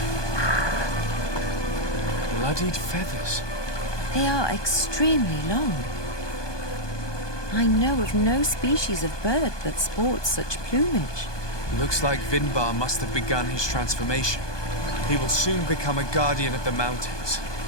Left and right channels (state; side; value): late; right; 1.2 ms